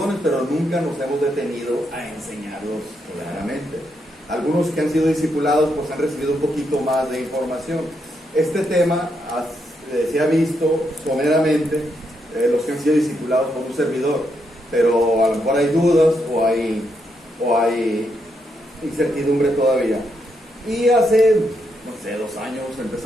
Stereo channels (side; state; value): both; normal; correlation 0.80